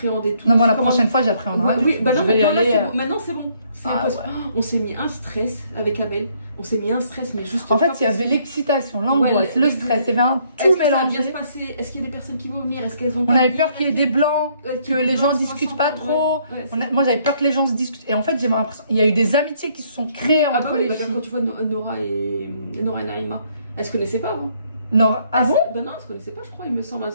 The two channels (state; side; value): inverted; both; correlation -0.67